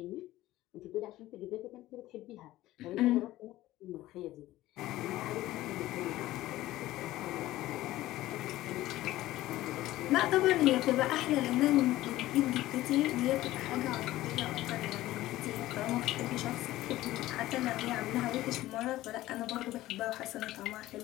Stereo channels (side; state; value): right; quieter; 16.0 dB